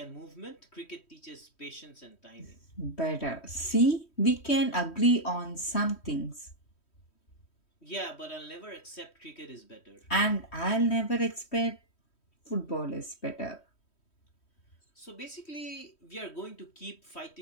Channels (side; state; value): right; late; 3.1 ms